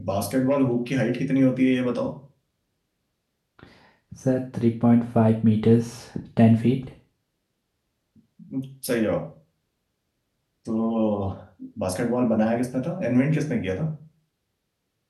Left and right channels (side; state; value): both; identical; correlation 1.00